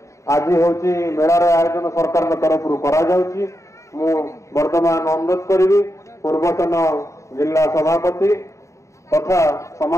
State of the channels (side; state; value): right; late; 0.14 ms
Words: आज हूँ मेलार आयोजन सरकार तरफ करा वर्तमान अनुरोध करी पूर्वतन जिला सभापति तथा